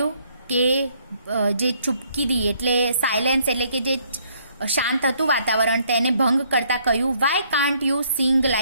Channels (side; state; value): both; inverted; correlation -0.66